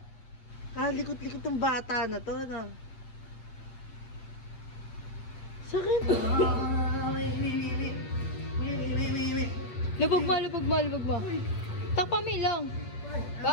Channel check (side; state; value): right; late; 8.2 ms